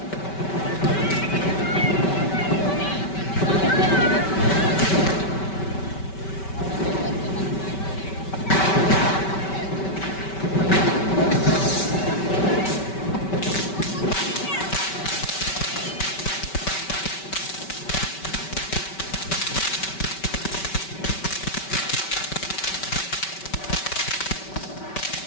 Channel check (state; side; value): late; right; 5.2 ms